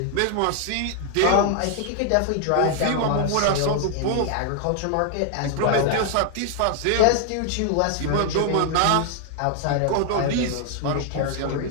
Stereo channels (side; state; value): both; different; correlation 0.00